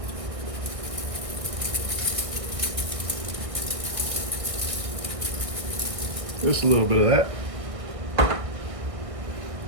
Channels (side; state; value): left; late; 1.6 ms